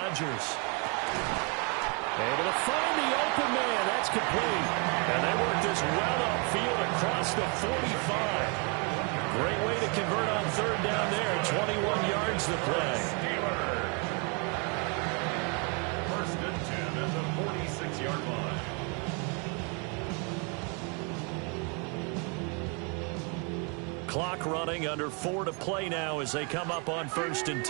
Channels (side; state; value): left; quieter; 35.2 dB